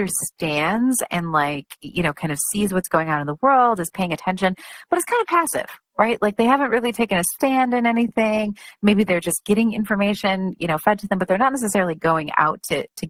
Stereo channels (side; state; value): both; identical; correlation 1.00